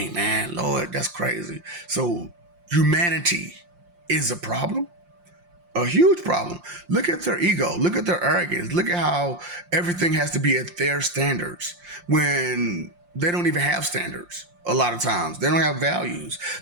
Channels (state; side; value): late; left; 5.7 ms